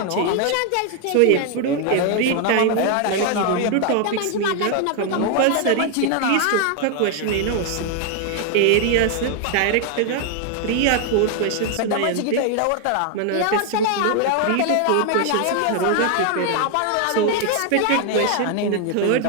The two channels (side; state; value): both; different; correlation 0.00